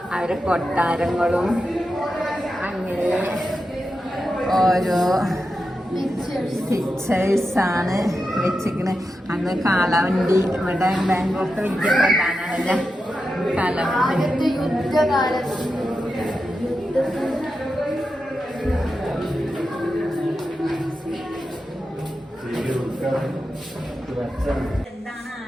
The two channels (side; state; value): both; normal; correlation 0.89